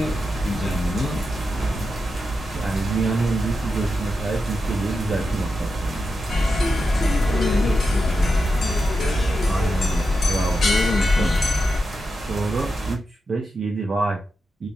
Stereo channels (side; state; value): both; normal; correlation 0.88